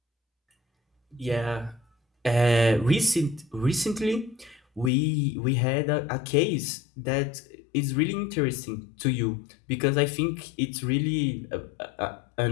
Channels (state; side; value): drops out; right; at 4.9 s